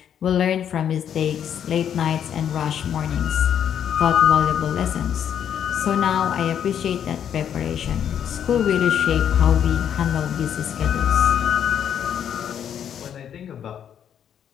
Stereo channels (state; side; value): quieter; right; 9.1 dB